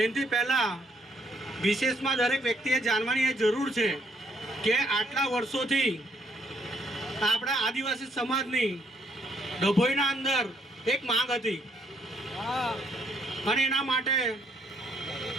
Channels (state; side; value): normal; both; correlation 0.70